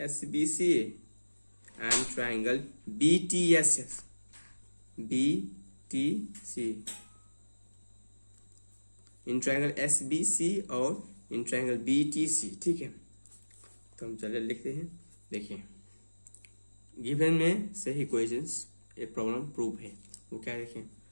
S B C and triangle B T S S, B T C, in triangle S B C और in triangle B T C, ठीक है। तो हम चले लिखते हैं, देखिए गिवन में से ही क्वेश्चंस एक प्रॉब्लम प्रूव है, वो क्या देखें,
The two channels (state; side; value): inverted; both; correlation -1.00